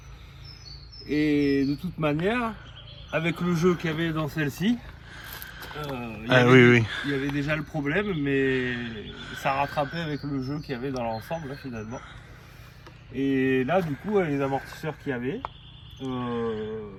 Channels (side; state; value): both; identical; correlation 1.00